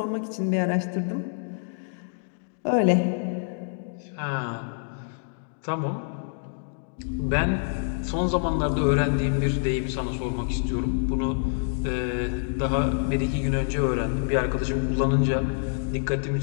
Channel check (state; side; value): silent; right; digital silence